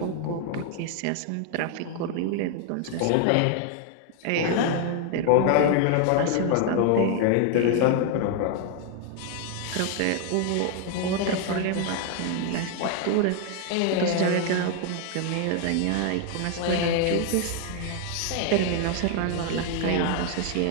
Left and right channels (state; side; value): different; both; correlation 0.00